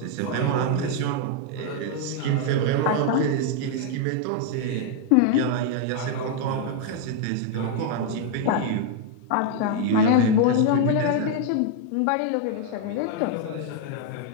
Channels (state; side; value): different; both; correlation 0.00